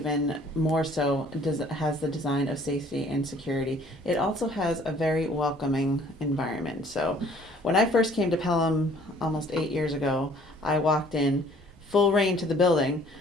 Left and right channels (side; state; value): both; normal; correlation 0.56